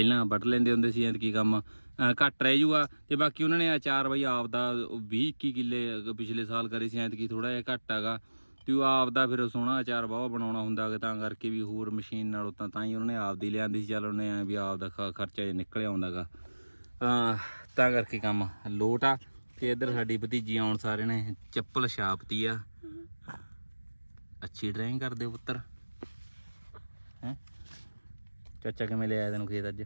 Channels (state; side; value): inverted; both; correlation -1.00